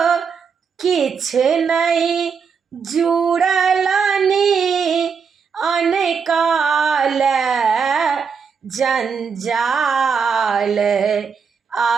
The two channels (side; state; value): left; quieter; 6.1 dB